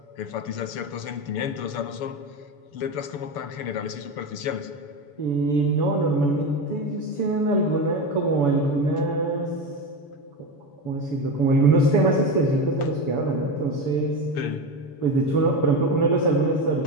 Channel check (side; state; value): right; late; 7.0 ms